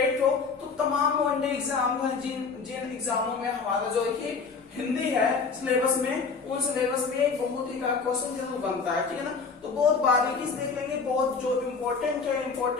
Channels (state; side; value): quieter; right; 5.0 dB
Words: हो तो तमाम वनडे एग्जाम है, जिन एग्जामों में हमारा जो है कि हिंदी है सिलेबस में, उन सिलेबस में एक बहुत ही का क्वेश्चन जरूर बनता है, ठीक है ना। तो बहुत बारीकी से देख लेंगे, बहुत जो